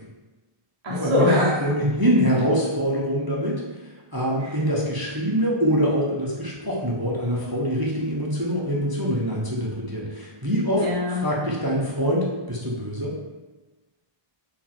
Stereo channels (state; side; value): late; left; 1.0 ms